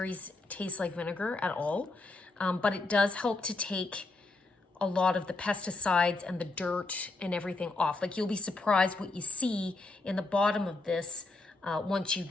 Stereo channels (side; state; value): right; quieter; 3.3 dB